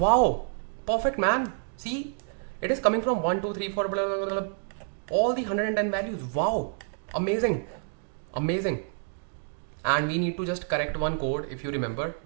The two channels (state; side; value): silent; left; 59 dB below the other